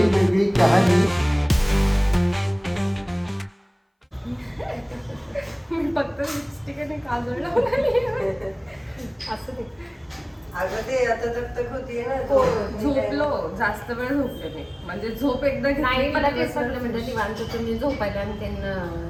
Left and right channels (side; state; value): both; identical; correlation 1.00